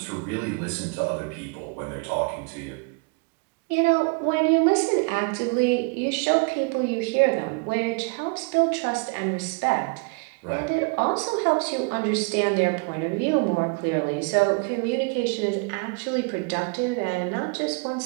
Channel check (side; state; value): left; quieter; 32.5 dB